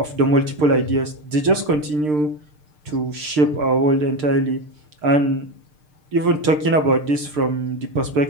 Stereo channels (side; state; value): left; late; 6.6 ms